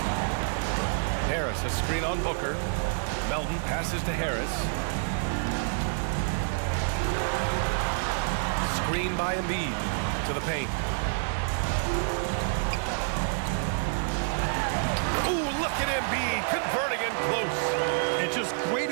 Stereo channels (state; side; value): silent; left; digital silence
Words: Harris, a screen on Booker. Melton passes to Harris. Screen by Embiid to the paint. Ooh, look at Embiid converting in close. And just great